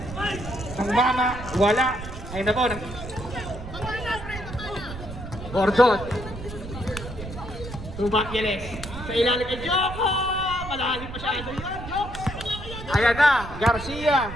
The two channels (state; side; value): noise; right; rumble, 10 dB below the sound